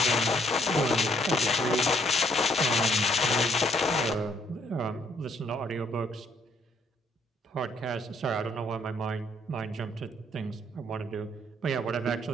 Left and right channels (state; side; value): normal; both; correlation 0.67